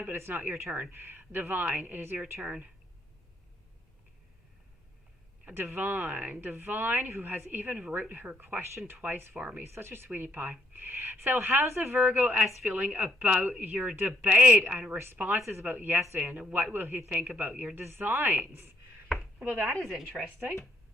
but it's not your turn. Divine, it is your turn. Divine, who has even wrote her question twice for me. Such a sweetie pie. So how's the Virgo S feeling about your debate and responses about yesterday, and what will he think about your designs? Well, that is interesting.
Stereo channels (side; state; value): both; normal; correlation 0.71